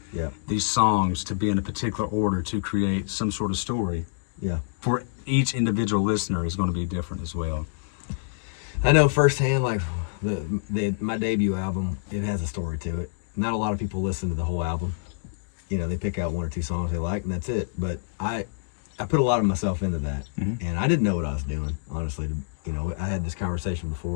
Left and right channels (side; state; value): right; silent; digital silence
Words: these songs to be in a particular order to create some sort of story. Yeah. For each individual listener is going to be different as well. I know firsthand, like my debut album, it has a story to it. Not a lot of people listen to the whole album. They pick out one or two songs they like, and that's it. But I put a lot of myself into that, and I didn't know what I was doing, honestly. I had this conversation